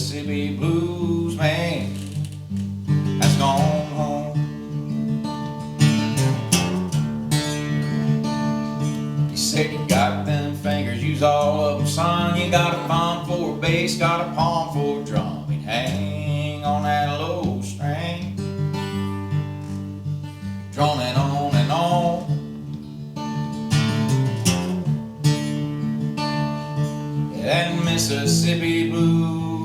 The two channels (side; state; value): both; identical; correlation 1.00